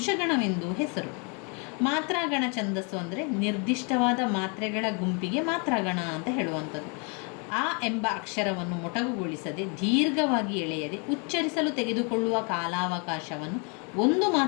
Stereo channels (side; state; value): right; quieter; 35.0 dB